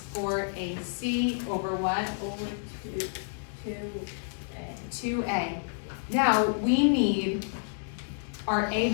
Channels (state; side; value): silent; right; digital silence